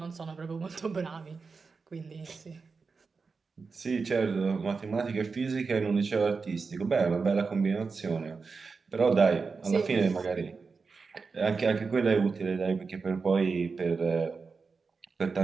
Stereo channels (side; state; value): left; quieter; 4.7 dB